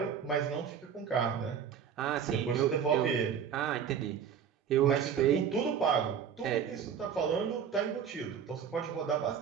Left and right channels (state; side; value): quieter; left; 7.7 dB